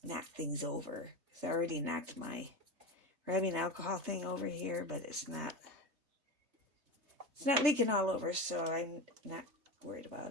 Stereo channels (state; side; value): late; left; 3.3 ms